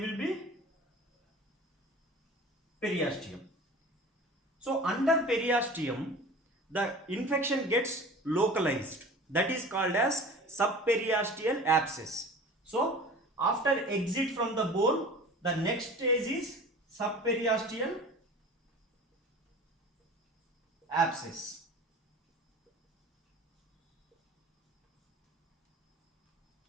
will be periosteum. So under periosteum, the infection gets localized, that is called as subperiosteal abscess. So after exit from the bone, the next stage is subperiosteal abscess.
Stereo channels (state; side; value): normal; both; correlation 0.40